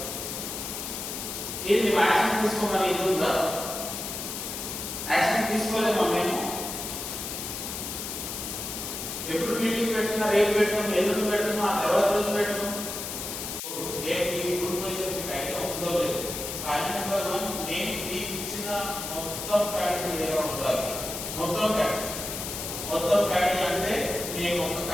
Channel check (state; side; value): noise; left; hiss, 6 dB below the sound